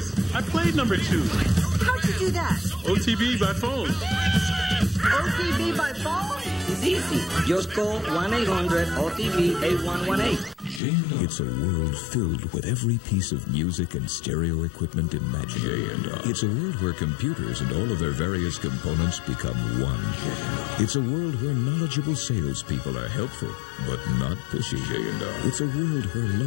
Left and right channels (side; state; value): right; drops out; at 10.8 s